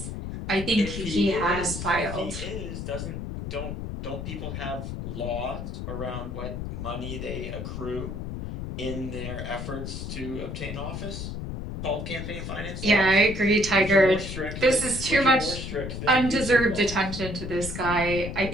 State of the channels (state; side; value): noise; left; rumble, 6 dB below the sound